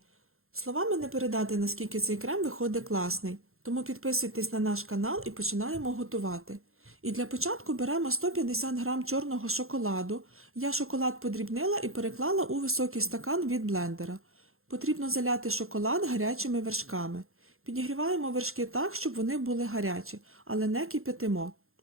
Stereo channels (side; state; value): left; late; 0.62 ms